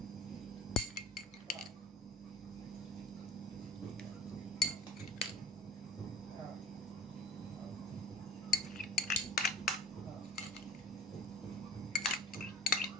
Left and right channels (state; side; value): normal; both; correlation 0.37